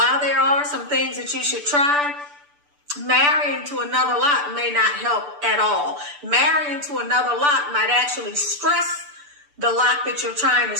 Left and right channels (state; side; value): late; left; 6.8 ms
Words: there are some things that you should try, marrying to another lock may not help at all. Marrying to another lock might actually stress the lock that you're trying to